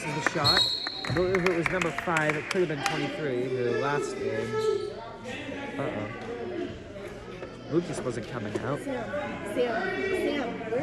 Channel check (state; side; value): identical; both; correlation 1.00